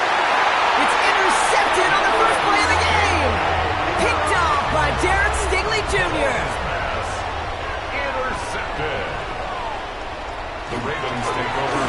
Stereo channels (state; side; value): identical; both; correlation 1.00